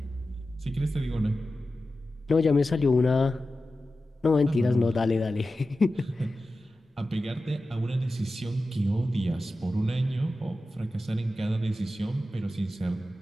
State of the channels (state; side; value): normal; both; correlation 0.93